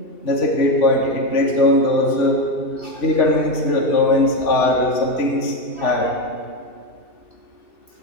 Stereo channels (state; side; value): late; right; 2.7 ms